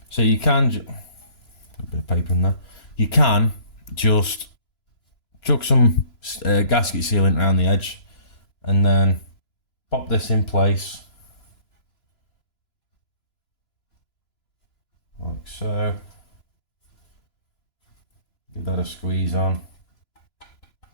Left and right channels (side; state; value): right; late; 2.9 ms